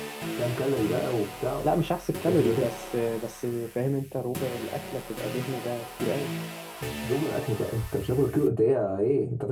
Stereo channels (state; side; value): identical; both; correlation 1.00